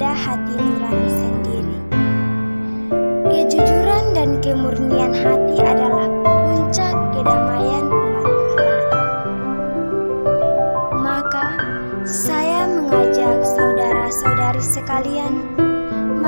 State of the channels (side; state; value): both; inverted; correlation -1.00